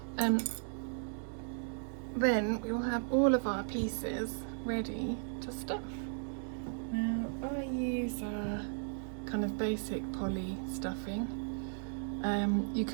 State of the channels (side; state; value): left; silent; digital silence